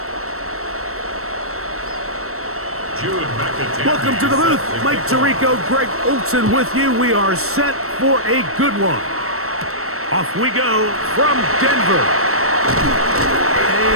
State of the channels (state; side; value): late; left; 0.63 ms